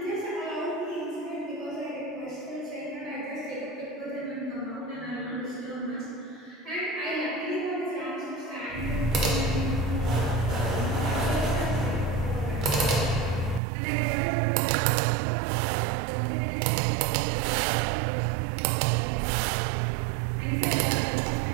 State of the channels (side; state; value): left; drops out; at 13.6 s